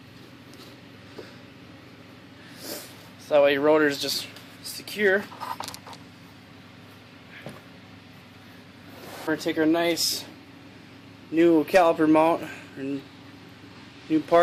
So that way your rotor is just secure. We're going to take our nice new caliper mount and new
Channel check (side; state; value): both; identical; correlation 1.00